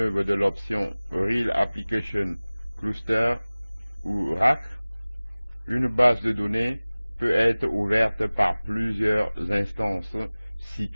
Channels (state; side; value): inverted; both; correlation -0.99